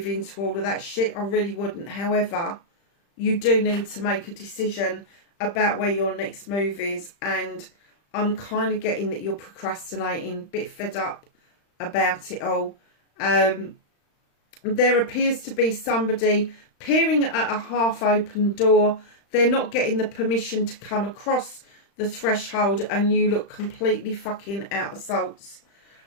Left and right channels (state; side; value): late; right; 35 ms